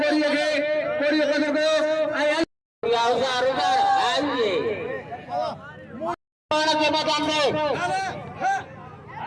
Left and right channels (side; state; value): both; identical; correlation 1.00